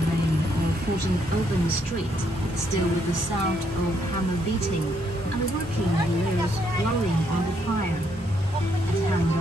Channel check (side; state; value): both; normal; correlation 0.73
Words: main or 14th open street, still with the sound of hammer beating and the working wheels blowing on the fire. At